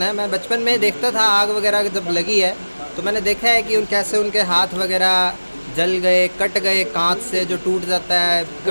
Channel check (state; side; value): inverted; both; correlation -1.00